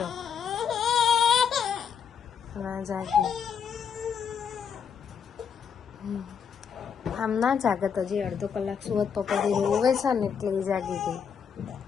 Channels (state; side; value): quieter; right; 7.1 dB